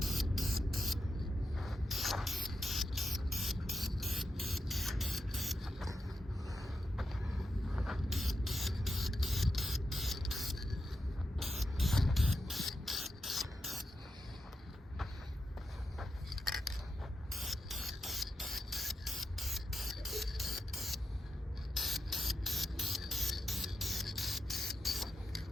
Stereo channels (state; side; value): normal; both; correlation 0.87